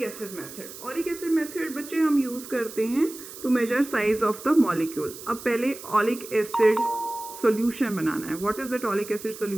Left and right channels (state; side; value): noise; right; hiss, 14 dB below the sound